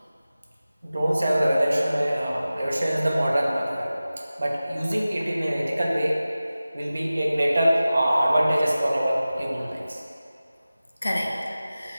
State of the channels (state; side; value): inverted; both; correlation -0.96